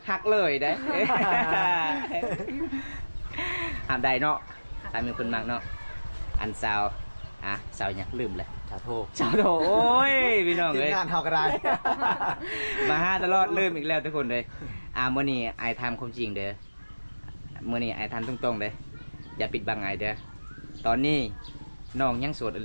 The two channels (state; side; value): inverted; both; correlation -1.00